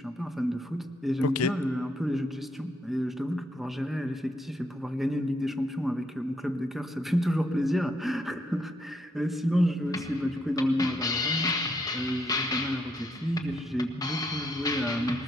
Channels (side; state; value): both; normal; correlation 0.76